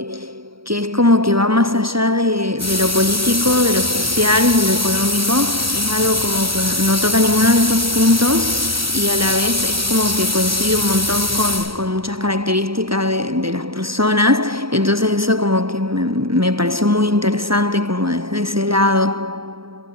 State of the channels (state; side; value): late; left; 0.75 ms